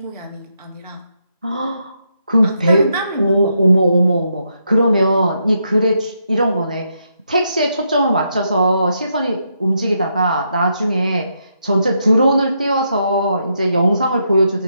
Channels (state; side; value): inverted; both; correlation -0.79